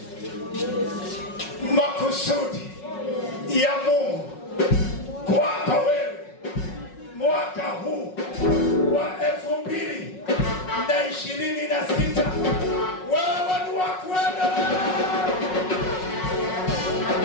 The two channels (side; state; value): right; late; 5.4 ms